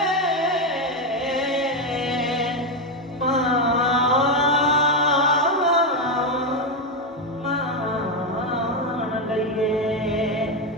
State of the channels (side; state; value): both; normal; correlation 0.07